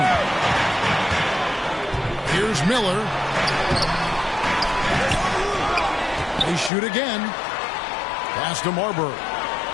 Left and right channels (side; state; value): right; drops out; at 6.7 s